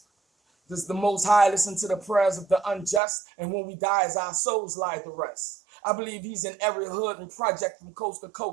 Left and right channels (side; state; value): left; drops out; at 3.0 s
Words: Does the Most High listen to the prayers of the unjust? And when we die, as our souls lie to rest. I believe he's in every hood and project from coast to